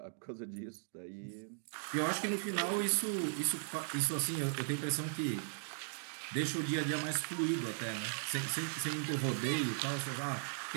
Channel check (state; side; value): silent; left; digital silence